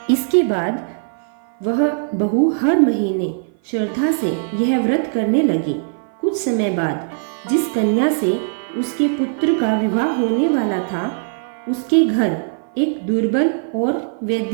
इसके बाद वह बहू हर महीने श्रद्धा से यह व्रत करने लगी। कुछ समय बाद जिस कन्या से उसके पुत्र का विवाह होने वाला था, उसके घर एक दुर्बल और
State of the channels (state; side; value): silent; left; 55 dB below the other